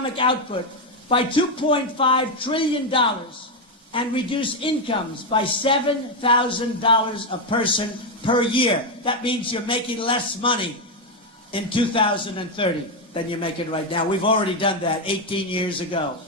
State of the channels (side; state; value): both; normal; correlation 0.05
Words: output by $2.5 trillion, and reduce incomes by $7,000 a person per year. That means you're making less money in 2030 than you're making right now. We've already done that 18 years ago.